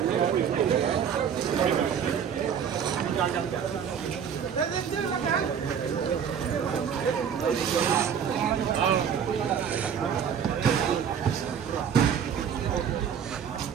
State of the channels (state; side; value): quieter; left; 7.8 dB